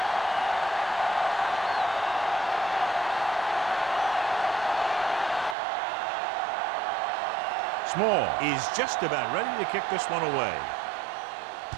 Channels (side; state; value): left; drops out; at 5.6 s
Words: Small is just about ready to kick this one away.